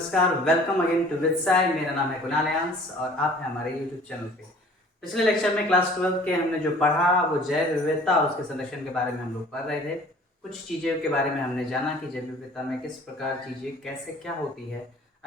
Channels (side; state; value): both; normal; correlation 0.50